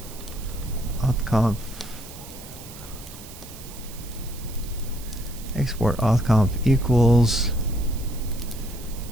authconf export authconf equals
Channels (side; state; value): right; noise; hiss, 16 dB below the sound